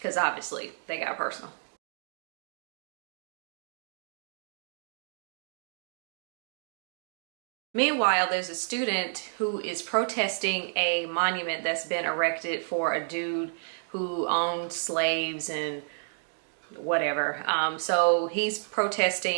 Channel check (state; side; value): silent; left; digital silence